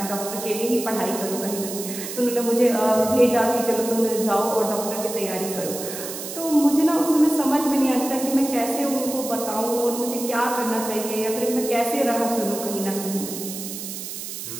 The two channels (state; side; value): noise; right; hiss, 8 dB below the sound